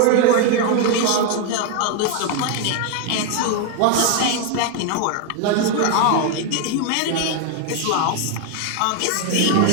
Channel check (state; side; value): different; both; correlation 0.00